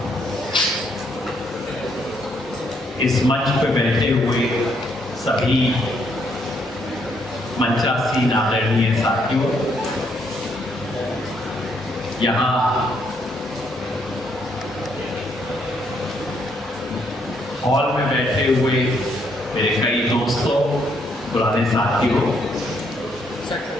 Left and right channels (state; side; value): normal; both; correlation 0.72